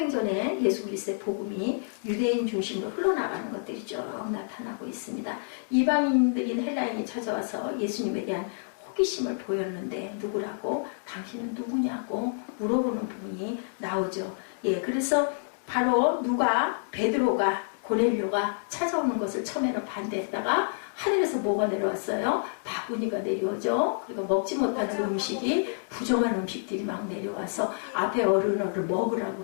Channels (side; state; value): right; silent; digital silence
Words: 예수 그리스도의 복음이 유대인 중심으로 흘러나가는 것들이 쭉 나타나고 있습니다. 이방인들인 헬라인이 찾아와서 예수님에 대한 호기심을 보였는데 누구라고? 당신은 누구냐고 물어보는 부분이 나오죠. 그래서 바로 베드로가 고넬료가 찾아오는 것을 처음에는 반대했다가 하늘에서 뭐가 내려왔어요? 바구니가 내려오죠. 그리고 먹지 못하는 음식이 부정한 음식들이 막 내려와서 앞에 어른어를 먹으라고